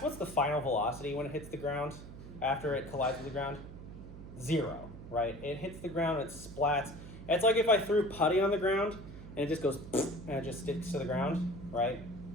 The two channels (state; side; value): noise; right; hum, 13 dB below the sound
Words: what's the final velocity when it hits the ground after it collides with the ground? 0, right? It hits the ground and it splats. It's like if I threw putty on the ground and it just goes and it just sticks to the ground, right?